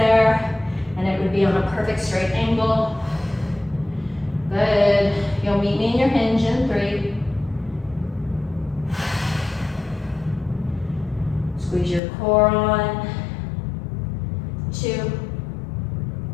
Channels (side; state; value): right; drops out; at 12.0 s